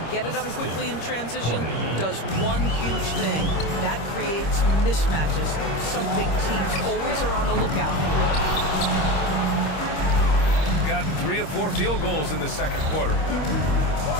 get it up quickly in transition does one huge thing. That creates mismatches, something teams always are on the lookout for. Gotten 3 of 4 field goals in the second quarter.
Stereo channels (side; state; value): right; late; 26 ms